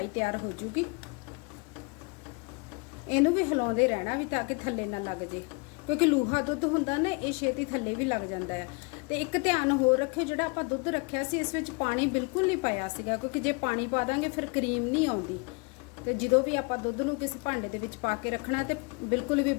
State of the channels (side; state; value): right; quieter; 32.2 dB